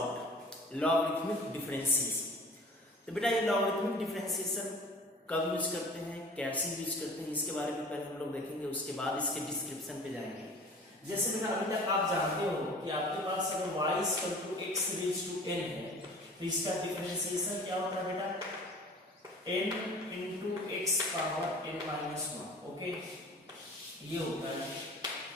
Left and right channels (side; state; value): both; normal; correlation 0.44